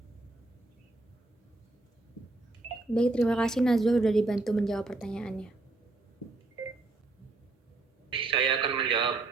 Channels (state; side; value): quieter; left; 3.2 dB